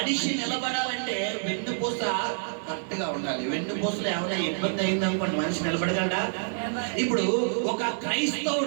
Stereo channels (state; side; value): silent; left; 60 dB below the other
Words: నిలబడాలంటే వెన్నుపూస కరెక్ట్ గా ఉండాలి. వెన్నుపూసలో ఏమైనా ఇబ్బంది అయిందనుకోండి మనిషి నిలబడగలడా? ఇప్పుడు ఒక